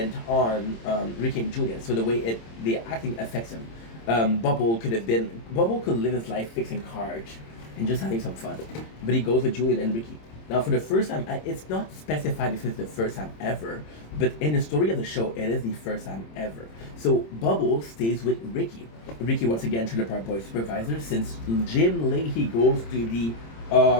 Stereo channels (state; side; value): late; right; 26 ms